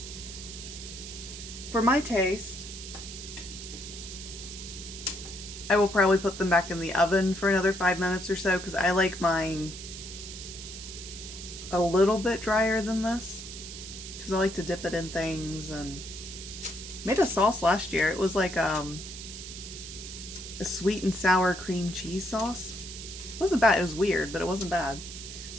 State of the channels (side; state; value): right; noise; hiss, 11 dB below the sound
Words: For my taste, I will probably put them back in the oven for another 5 minutes or so because I like mine a little bit drier than this because I like to dip it in things. And made a sauce last year. It was like a sweet and sour cream cheese sauce. It wasn't bad. It was weird, but it wasn't bad.